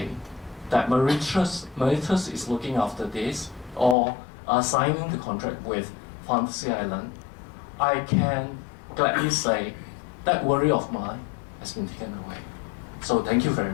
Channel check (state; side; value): drops out; right; at 4.0 s